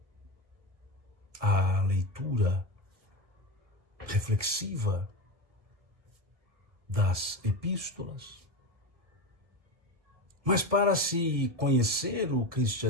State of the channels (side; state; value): left; late; 1.6 ms